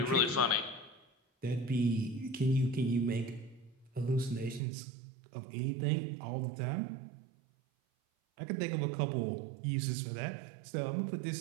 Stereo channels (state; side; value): drops out; left; at 4.6 s